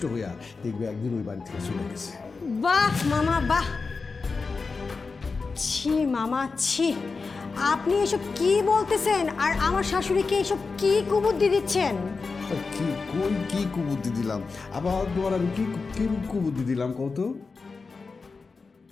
হইয়া দেখবে একদিন ওই বাড়ি থেকে চলে গেছে। বাহ মামা বাহ! ছি মামা ছি! আপনি এসব কি বলতেছেন আর আমার শাশুড়িকে এসব কি কুবুদ্ধি দিচ্ছেন? কি কোন কি কুবুদ্ধি দিলাম? আবার তোমার আমি কি কি কুবুদ্ধি দিলাম কত?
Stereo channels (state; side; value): quieter; right; 4.4 dB